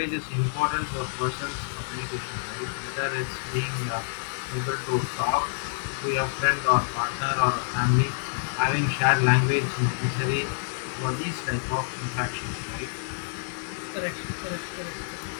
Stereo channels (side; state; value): right; silent; digital silence